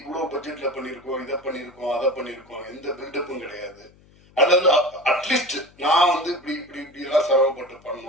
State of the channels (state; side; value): noise; left; hum, 28 dB below the sound